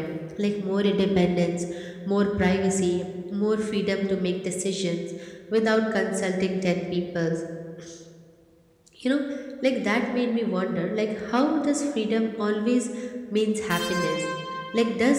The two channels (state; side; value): identical; both; correlation 1.00